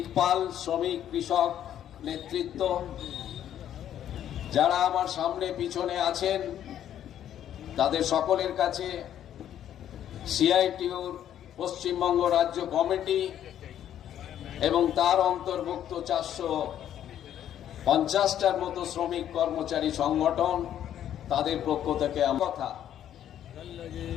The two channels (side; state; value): right; quieter; 10.7 dB